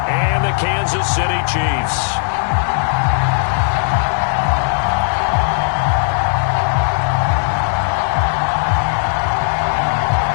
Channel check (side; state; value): right; silent; digital silence